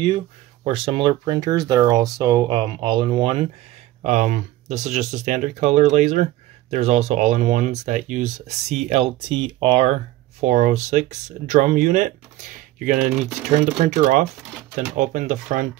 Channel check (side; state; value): left; quieter; 15.8 dB